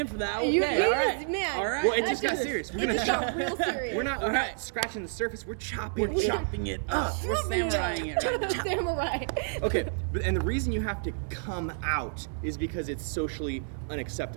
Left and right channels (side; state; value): left; silent; digital silence